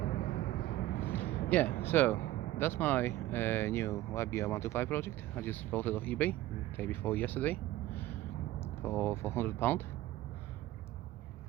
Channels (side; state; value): left; quieter; 15.6 dB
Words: Yeah, so that's my new YBR 125 project. I just bought it off eBay the day before yesterday for £100.